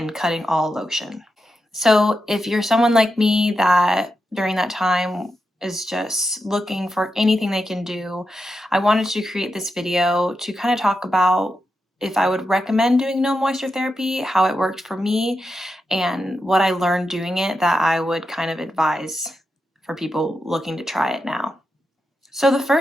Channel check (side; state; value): both; normal; correlation 0.88